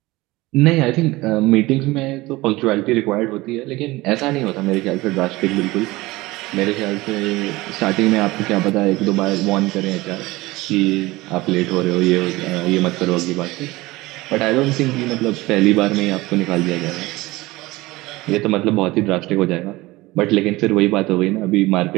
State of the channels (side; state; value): left; quieter; 20.2 dB